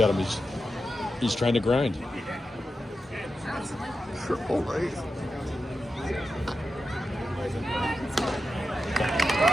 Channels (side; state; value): both; normal; correlation 0.89